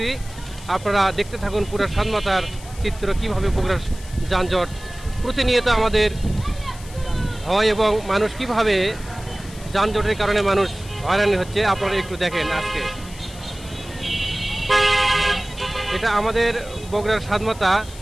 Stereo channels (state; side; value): noise; left; hiss, 18 dB below the sound